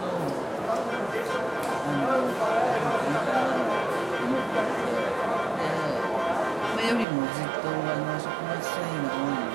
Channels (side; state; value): left; drops out; at 7.1 s